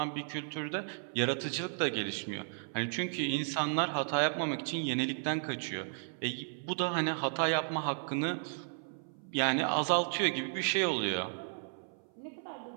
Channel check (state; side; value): silent; left; 55 dB below the other